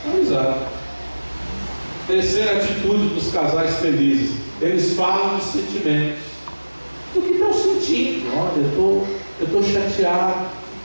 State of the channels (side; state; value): both; inverted; correlation -1.00